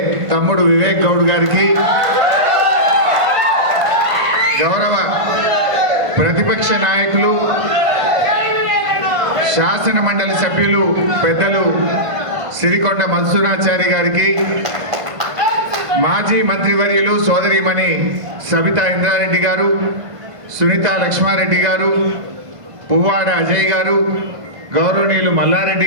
తమ్ముడు వివేక్ గౌడ్ గారికి, గౌరవ ప్రతిపక్ష నాయకులు శాసన మండలి సభ్యులు పెద్దలు సిరికొండ మన్సూరాచారి గారికి, మాజీ మంత్రివర్యులు సోదరిమణి సబితా ఇంద్రారెడ్డి గారు, సునీత లక్ష్మారెడ్డి గారు, పువ్వాడ అజయ్ గారు, గౌరవనీయులు మల్లారెడ్డి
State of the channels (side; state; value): left; late; 1.5 ms